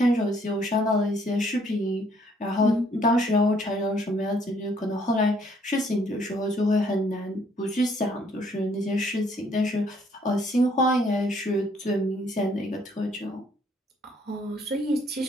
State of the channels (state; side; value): normal; both; correlation 0.65